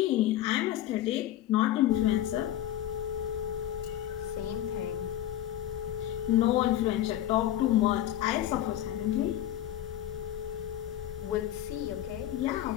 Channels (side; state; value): right; quieter; 12.7 dB